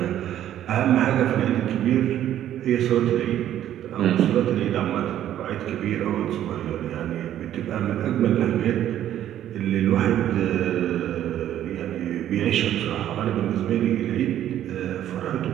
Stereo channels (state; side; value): quieter; left; 11.6 dB